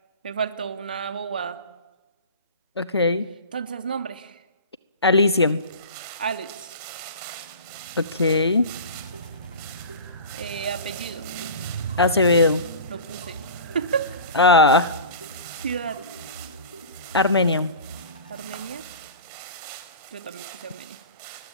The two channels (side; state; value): both; inverted; correlation -0.34